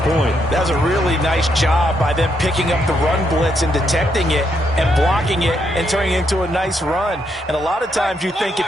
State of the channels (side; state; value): both; normal; correlation 0.77